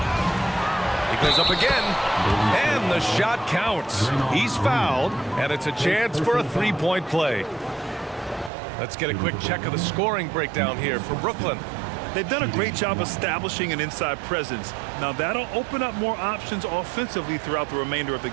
He goes up again, and the shot counts. He's fouled, and it's a chance for a three-point play. Let's get a quick check of the scoring breakdown here for Brooklyn. They've done a great job establishing an inside presence. Now that'll open up more options offensively throughout the remainder of the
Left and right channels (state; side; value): drops out; left; at 8.5 s